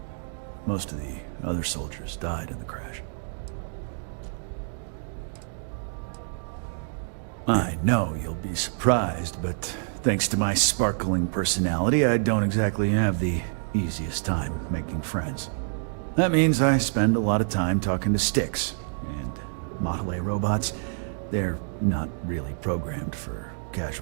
Most of the other soldiers died in the crash. I know you'll be surprised, but thanks to my sparkling personality, I don't exactly have the easiest time making friends. That means I spend a lot of time talking to Styx, and Model A robots, they're not really programmed for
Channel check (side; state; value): left; silent; digital silence